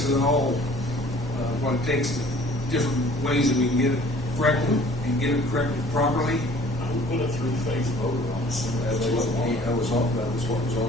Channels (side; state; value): both; normal; correlation 0.52